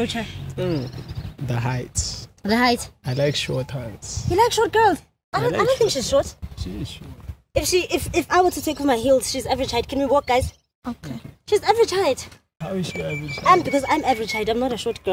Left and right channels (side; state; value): both; identical; correlation 1.00